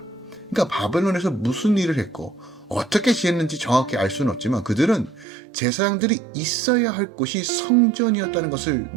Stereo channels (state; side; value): drops out; left; at 5.2 s